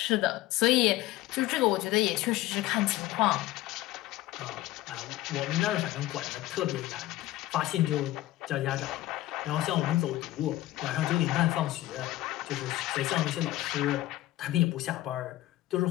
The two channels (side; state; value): right; quieter; 16.1 dB